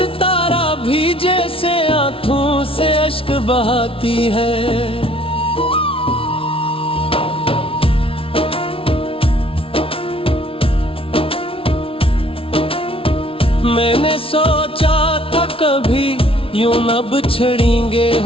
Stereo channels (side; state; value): right; late; 0.26 ms